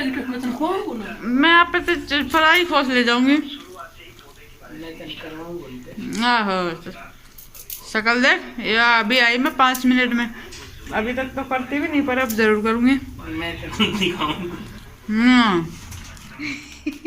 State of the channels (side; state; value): both; identical; correlation 1.00